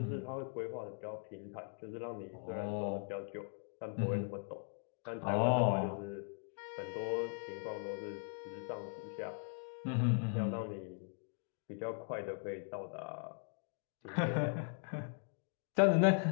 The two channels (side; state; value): right; silent; 51 dB below the other